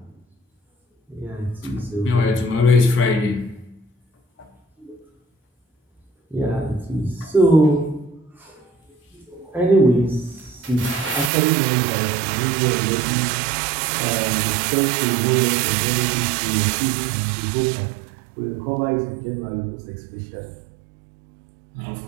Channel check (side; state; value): left; drops out; at 11.3 s